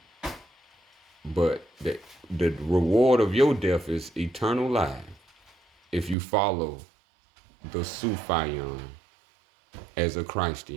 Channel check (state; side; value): drops out; left; at 6.2 s